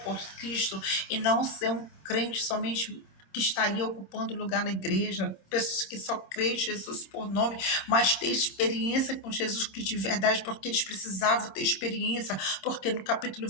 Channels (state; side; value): late; right; 26 ms